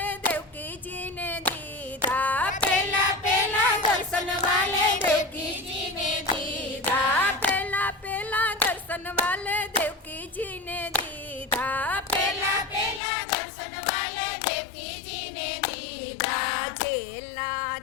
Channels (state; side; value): drops out; right; at 13.0 s